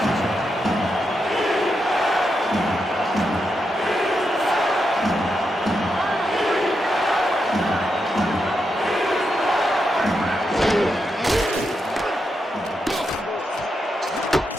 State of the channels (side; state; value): both; normal; correlation 0.84